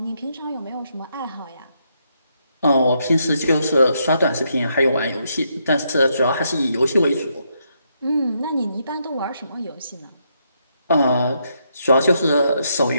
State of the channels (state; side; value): inverted; both; correlation -0.77